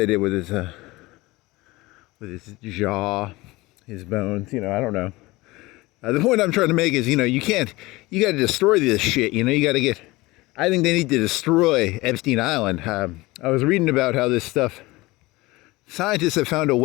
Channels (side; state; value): right; quieter; 21.0 dB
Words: did with his jaw, his bones. I don't know. The point I'm trying to make is, you got to destroy this shit. I think they need to destroy Epstein Island. I was reading about how this stuff, scientists have found a